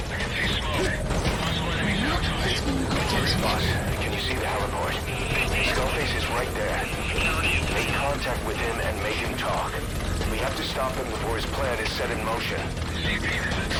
I can see smoke. Possible enemies outside. Boss, can you see the heliport? Skullface is right there. Make contact with him and make him talk. We have to stop him before his plan is set in motion.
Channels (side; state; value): both; identical; correlation 1.00